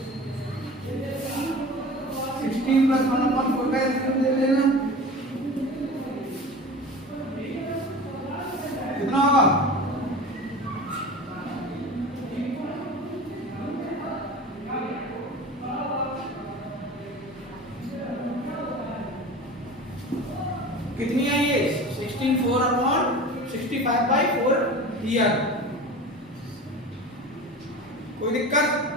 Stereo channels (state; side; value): normal; both; correlation 0.35